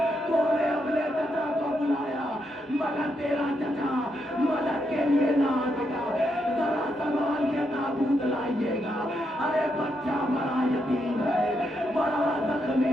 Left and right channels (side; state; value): both; normal; correlation 0.80